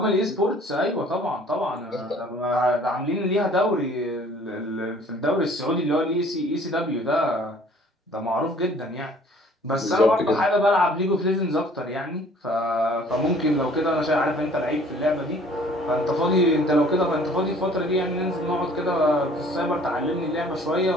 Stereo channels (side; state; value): both; normal; correlation 0.54